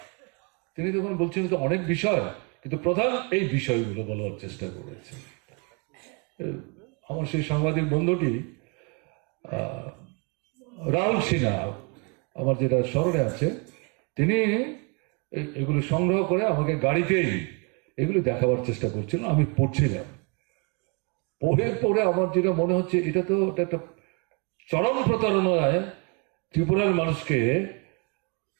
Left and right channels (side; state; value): left; quieter; 32.8 dB